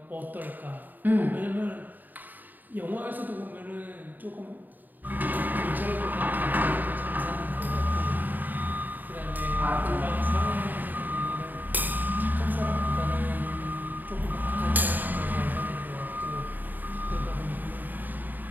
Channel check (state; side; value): late; left; 0.088 ms